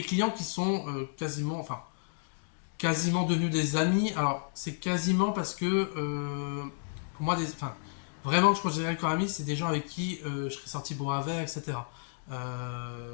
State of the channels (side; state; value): right; silent; digital silence